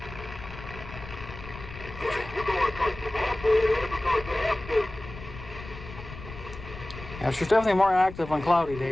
Yeah, she's definitely more active on cloudy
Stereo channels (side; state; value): left; noise; rumble, 13 dB below the sound